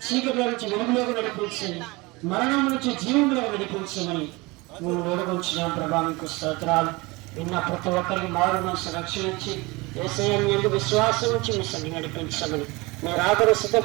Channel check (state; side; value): quieter; left; 23.9 dB